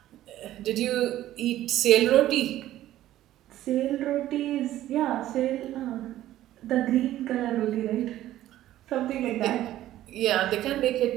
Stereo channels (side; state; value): left; quieter; 13.7 dB